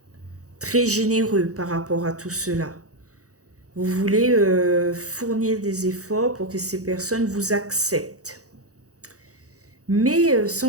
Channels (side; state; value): left; late; 0.66 ms